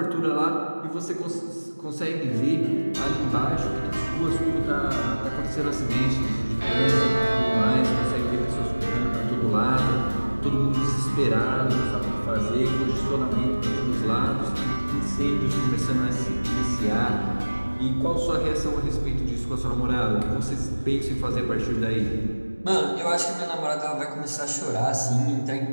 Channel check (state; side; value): inverted; both; correlation -1.00